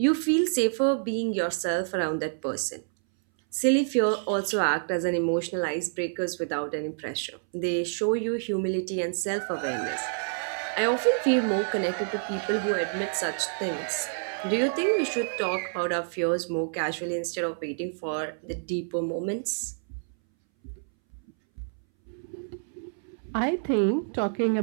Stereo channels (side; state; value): left; silent; 59 dB below the other